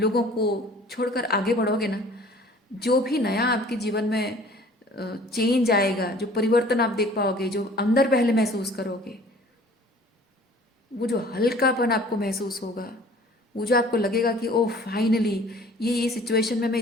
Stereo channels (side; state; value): both; normal; correlation 0.50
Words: को छोड़कर आगे बढ़ोगे ना, जो भी नया आपके जीवन में चेंज आएगा, जो परिवर्तन आप देख पाओगे, जो अंदर पहले महसूस करोगे, वो जो हल्कापन आपको महसूस होगा, वो जो आपको लगेगा कि ओह फाइनली ये सिचुएशन में मैं